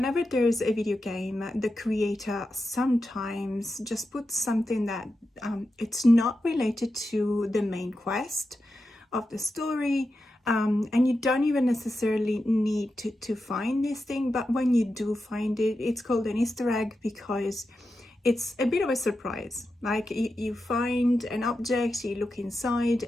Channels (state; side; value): normal; both; correlation 0.90